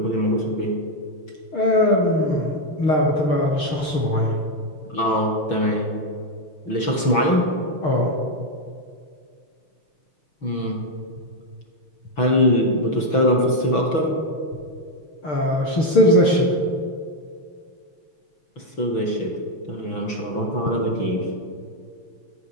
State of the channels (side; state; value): right; late; 6.1 ms